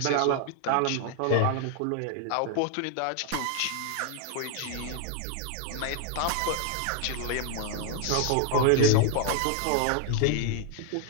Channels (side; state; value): both; different; correlation 0.00